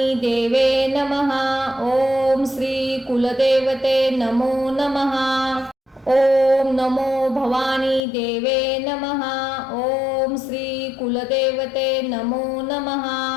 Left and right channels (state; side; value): drops out; right; at 8.0 s